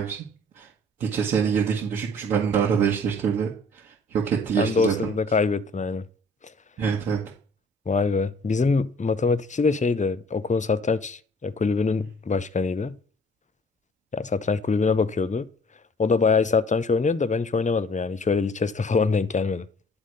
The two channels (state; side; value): normal; both; correlation 0.54